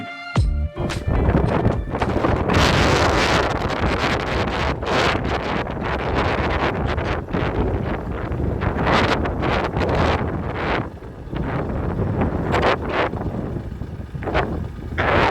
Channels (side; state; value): both; identical; correlation 1.00